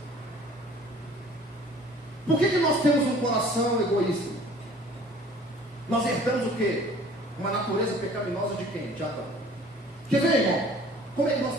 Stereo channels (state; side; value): normal; both; correlation 0.50